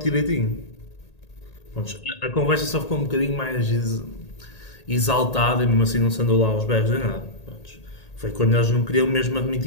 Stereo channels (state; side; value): late; right; 1.8 ms